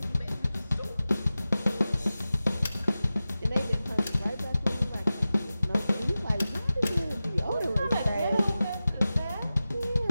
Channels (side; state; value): both; inverted; correlation -0.95